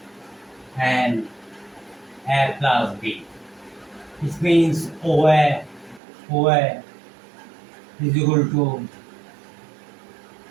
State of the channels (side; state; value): left; drops out; at 6.0 s